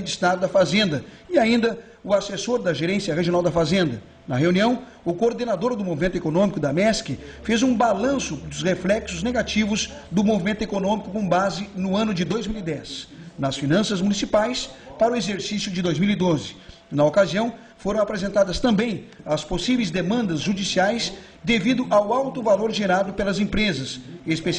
de Estado da Fazenda e ainda o assessor da Gerência Regional da Fazenda. Na reunião, o coordenador do movimento econômico da MESC fez um balanço dos reflexos negativos do movimento econômico com base no ano de 2010, nas finanças municipais para o exercício de 2012. Na ocasião, foram apresentadas também as possíveis demandas judiciais devido ao alto valor gerado pelas empresas,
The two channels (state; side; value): identical; both; correlation 1.00